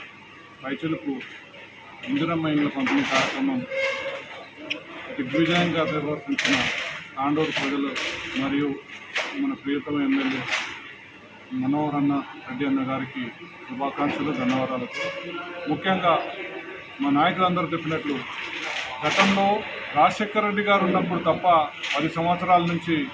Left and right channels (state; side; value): identical; both; correlation 1.00